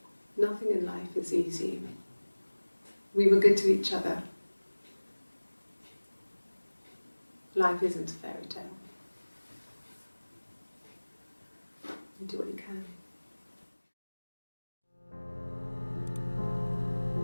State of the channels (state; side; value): inverted; both; correlation -1.00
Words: Nothing in life is easy. We were good to each other. Life isn't a fairy tale. You do what you can.